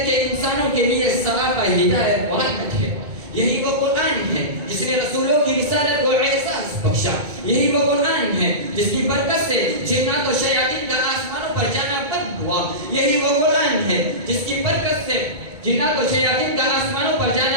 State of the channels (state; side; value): late; left; 2.2 ms